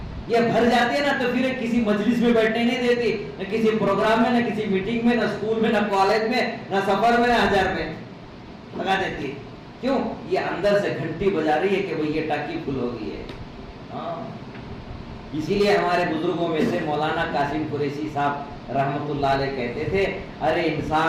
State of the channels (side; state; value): both; identical; correlation 1.00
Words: یہ بھر جاتی ہے نا تو پھر کسی مجلس میں بیٹھنے نہیں دیتی، نہ کسی پروگرام میں، نہ کسی میٹنگ میں، نہ اسکول میں، نہ کالج میں، نہ سفر میں، نہ ہزار میں لگا دیتی ہے۔ کیوں؟ یہ اندر سے گھنٹی بجا رہی ہے کہ بھئی یہ ٹاکی فل ہو گئی ہے۔ ہاں، اسی لیے ہمارے بزرگوں میں سے مولانا قاسم قریشی صاحب رحمت اللہ علیہ کہتے تھے، ارے